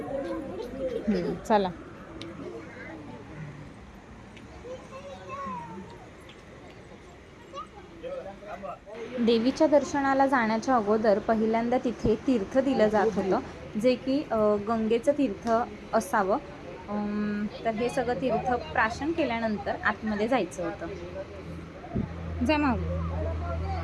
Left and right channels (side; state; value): both; identical; correlation 1.00